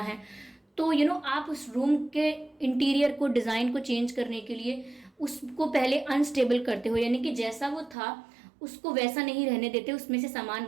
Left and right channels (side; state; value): left; drops out; at 8.0 s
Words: है, तो आप उस रूम के इंटीरियर को, डिज़ाइन को चेंज करने के लिए उसको पहले अनस्टेबल करते हो, यानी कि जैसा वो था उसको वैसा नहीं रहने देते, उसमें से सामान